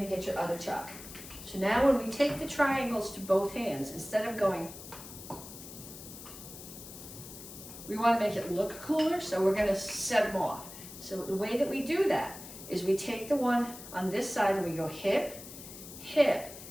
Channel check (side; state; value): left; noise; hiss, 14 dB below the sound